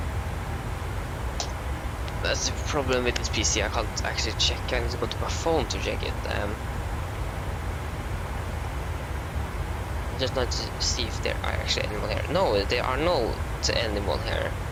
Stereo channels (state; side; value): identical; both; correlation 1.00